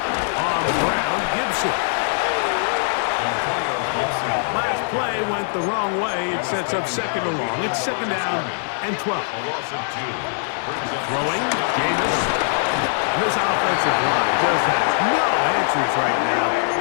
the ground, Gibson. Last play went the wrong way. It sets up second and long. It's second down and 12. Throwing, Jameis. This offensive line just has no answers right now.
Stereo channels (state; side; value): silent; right; 63 dB below the other